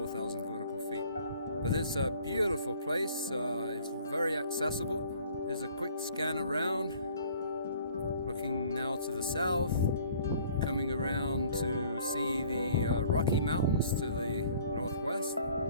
vertical feet. But it's a beautiful place. It's very accessible. There's a quick scan around. Looking now to the south, coming around to see the Rocky Mountains to the northwest.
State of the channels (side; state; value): both; inverted; correlation -0.54